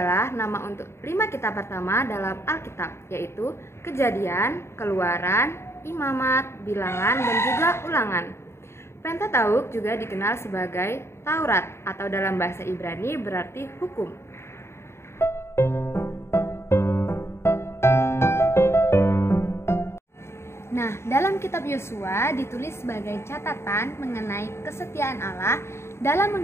nama untuk 5 kitab pertama dalam Alkitab, yaitu Kejadian, Keluaran, Imamat, Bilangan, dan juga Ulangan. Pentateuk juga dikenal sebagai Taurat atau dalam bahasa Ibrani berarti hukum. Nah, dalam kitab Yosua ditulis sebagai catatan mengenai kesetiaan Allah dalam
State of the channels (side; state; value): right; late; 0.13 ms